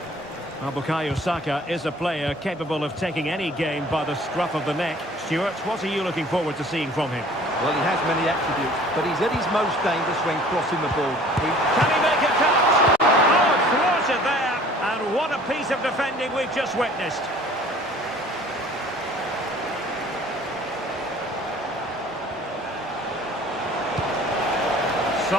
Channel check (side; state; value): both; normal; correlation 0.50